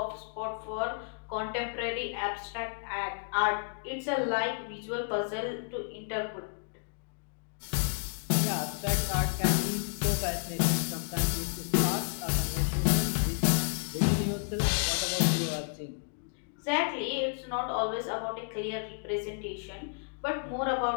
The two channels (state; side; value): silent; right; digital silence